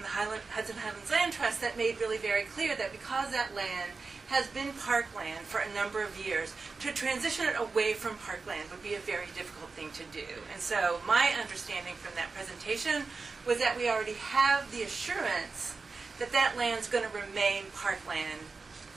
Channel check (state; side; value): quieter; left; 4.3 dB